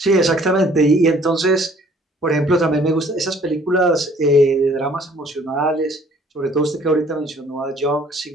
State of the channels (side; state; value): both; normal; correlation 0.57